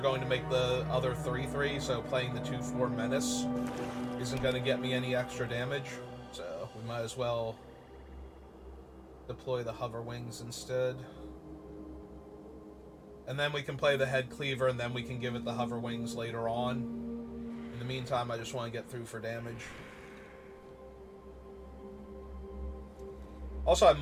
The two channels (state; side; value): identical; both; correlation 1.00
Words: going to make the other 3/3, so playing the 2/4 Menace isn't going to get me any extra damage. So we might as well deploy the Hover Wings instead. And then we can play the Head Cleaver, and then we can give it the Hover Wings later on. In the meantime, I just want to get through for damage. Also, I